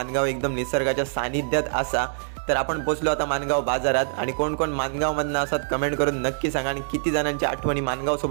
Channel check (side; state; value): left; silent; digital silence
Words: एकदम निसर्गाच्या सानिध्यात असा. तर आपण पोचलो आता मानगाव बाजारात. आणि कोण कोण मानगावमधनं असतात कमेंट करून नक्की सांगा, आणि किती जणांच्या आठवणी